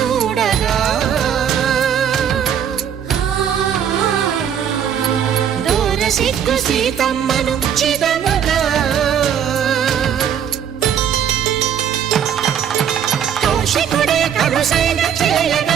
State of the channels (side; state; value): left; quieter; 8.8 dB